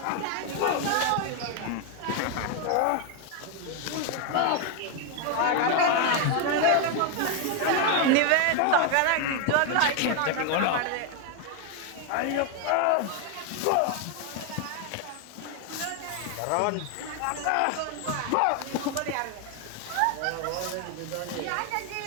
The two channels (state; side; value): different; both; correlation 0.01